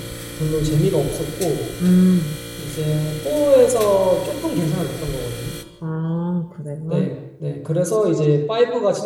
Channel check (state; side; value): identical; both; correlation 1.00